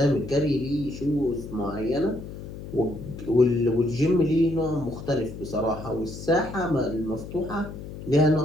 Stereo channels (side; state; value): left; noise; hum, 11 dB below the sound